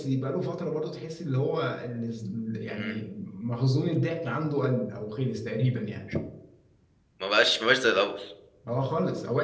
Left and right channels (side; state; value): both; identical; correlation 1.00